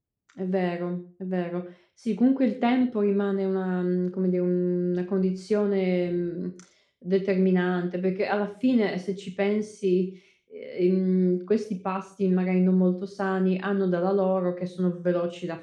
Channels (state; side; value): identical; both; correlation 1.00